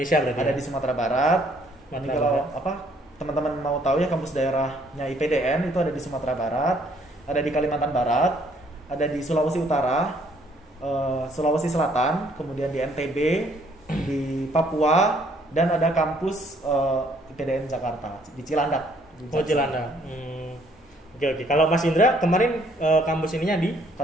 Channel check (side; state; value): both; normal; correlation 0.64